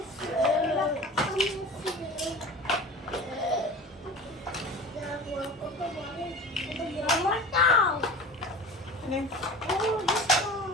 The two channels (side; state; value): both; normal; correlation 0.37